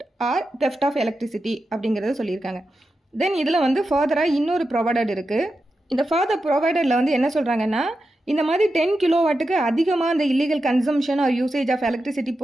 or theft of electricity அப்படிங்கிறத சொல்லியிருக்காங்க. தென் இதில் வந்து ஃபர்தராக இன்னொரு ப்ரொவைடட் இருக்குது. இந்த ஃபர்தர் ப்ரொவைடரில் வந்து என்ன சொல்கிறாங்கன்னா, இந்த மாதிரி 10 கிலோவாட்டுக்கு அதிகமாக அந்த illegal consumption or usage of electricity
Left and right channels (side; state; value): both; normal; correlation 0.90